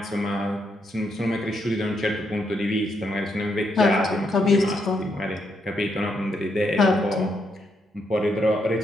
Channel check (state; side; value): normal; both; correlation 0.78